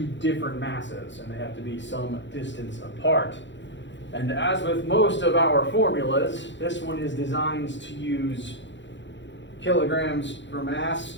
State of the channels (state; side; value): late; right; 0.53 ms